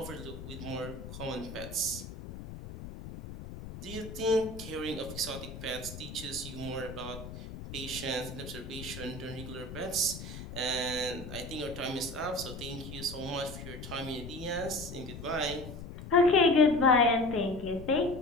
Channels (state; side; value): noise; left; rumble, 11 dB below the sound